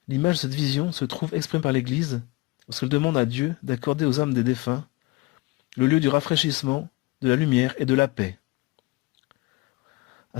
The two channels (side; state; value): right; quieter; 23.5 dB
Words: L'image de cette vision se trouve exprimée par l'Église lorsqu'elle demande à Dieu d'accorder aux âmes des défunts le lieu du rafraîchissement, de la lumière et de la paix. À